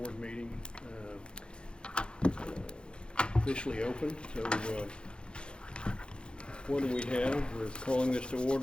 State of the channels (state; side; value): late; right; 0.053 ms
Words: meeting, officially open. So, what do we have? We're calling this to